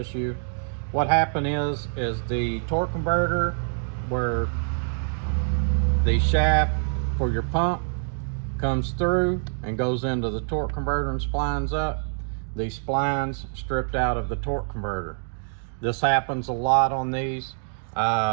what happened is the torque converter, where the shaft for your pump comes through and goes into the torque converter and splines up, the splines stripped out of the torque converter. This happens a lot on these.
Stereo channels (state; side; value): silent; left; digital silence